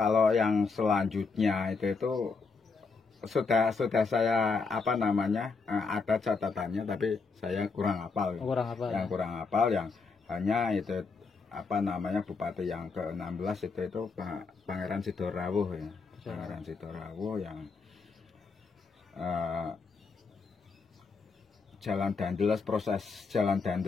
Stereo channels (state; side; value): quieter; right; 4.6 dB